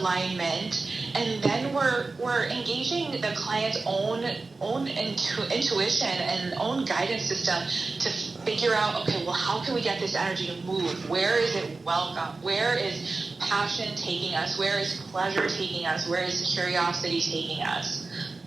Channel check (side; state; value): left; quieter; 3.7 dB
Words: and then we're engaging the client's own intuition and own guidance system to figure out, okay, well, how can we get this energy to move? Where is it welcome? Where is passion taking us? Where is pleasure taking us? Where is curiosity taking us?